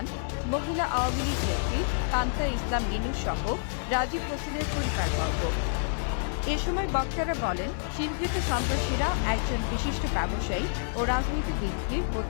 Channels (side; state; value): right; silent; 59 dB below the other